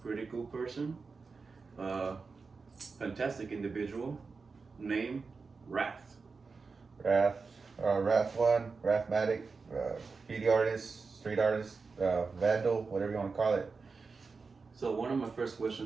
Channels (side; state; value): left; quieter; 4.6 dB